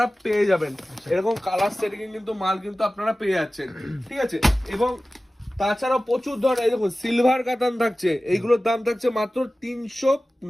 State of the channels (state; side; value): normal; both; correlation 0.96